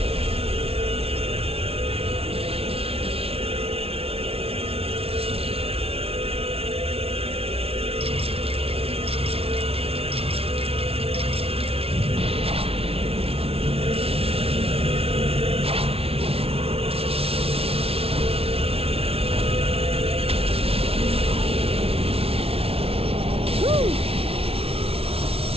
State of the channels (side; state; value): left; late; 0.28 ms